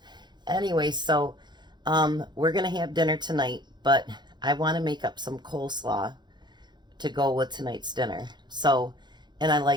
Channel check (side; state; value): left; late; 0.21 ms